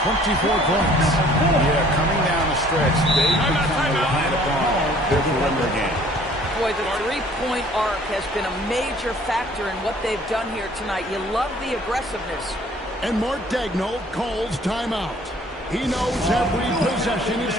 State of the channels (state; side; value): normal; both; correlation 0.55